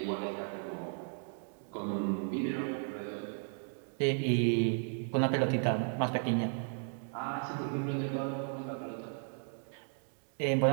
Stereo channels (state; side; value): silent; left; 54 dB below the other